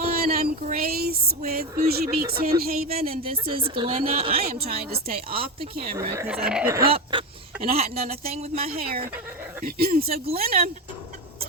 I'm Grace with Boujee Beaks Hen Haven, and this is Glenna. I am trying to stay off the camera because I've been up and I hadn't done a thing with my hair. So Glenna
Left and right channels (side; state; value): both; normal; correlation 0.17